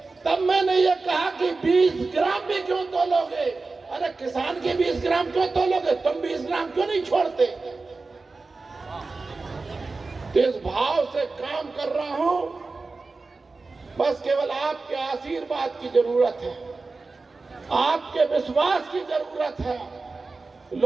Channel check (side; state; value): left; quieter; 3.8 dB